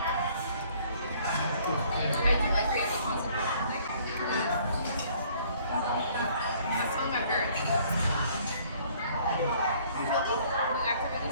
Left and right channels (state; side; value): inverted; both; correlation -0.59